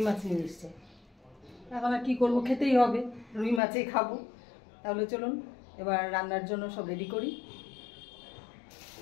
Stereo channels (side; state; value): right; drops out; at 3.6 s